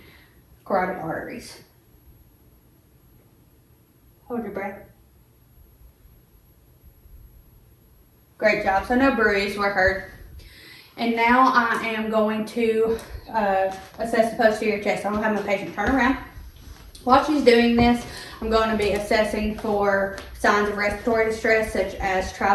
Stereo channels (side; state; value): both; identical; correlation 1.00